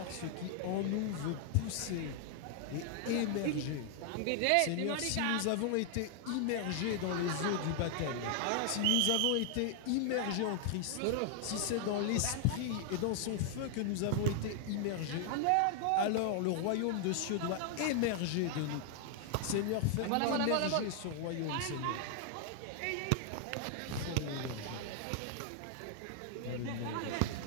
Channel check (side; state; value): both; different; correlation 0.00